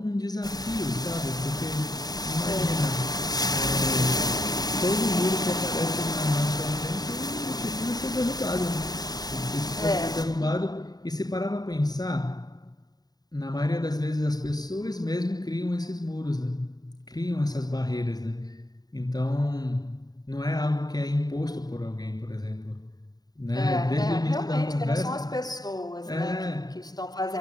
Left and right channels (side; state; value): right; late; 0.19 ms